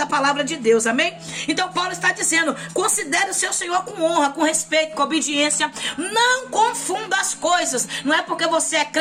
palavra de Deus, amém? Então Paulo está dizendo, considere o seu Senhor com honra, com respeito, com obediência, não confunda as coisas. Não é porque você é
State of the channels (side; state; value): both; identical; correlation 1.00